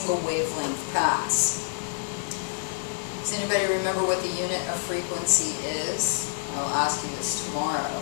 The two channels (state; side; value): silent; right; digital silence